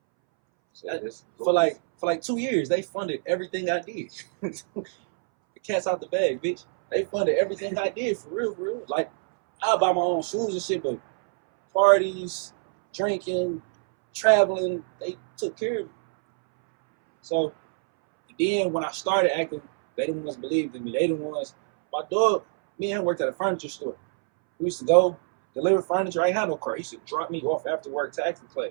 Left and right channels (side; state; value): left; silent; 61 dB below the other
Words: So For like 2 years, they funded everything I did. The cat's out the bag, bitch. They funded everything I did, for real, for real. Like, I buy my own shoes and shit, but parties, drinking, traveling, they took care of me. So then when I started acting, they the ones believed in me. They the ones. My dog, me and him worked at a furniture store. We used to go deliver furniture. I ain't had no car. He used to drop me off after work to acting